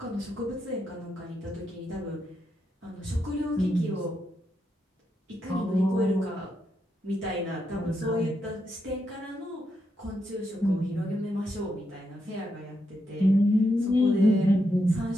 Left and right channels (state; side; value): normal; both; correlation 0.82